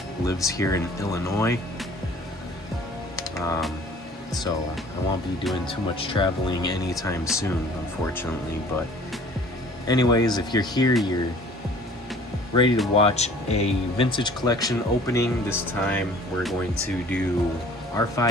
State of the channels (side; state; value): both; normal; correlation 0.51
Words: lives here in Illinois. So I won't be doing too much traveling anytime soon, unfortunately. But anyways, if you're here, you're ready to watch a vintage collection opening. This time we're going to do